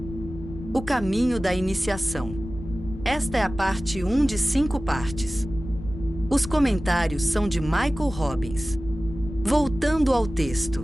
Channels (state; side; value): noise; left; rumble, 11 dB below the sound